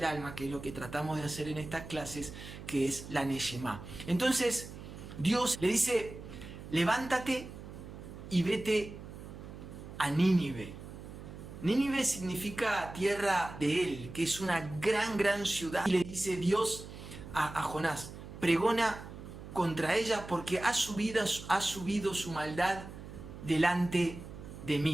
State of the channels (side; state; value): right; noise; hum, 13 dB below the sound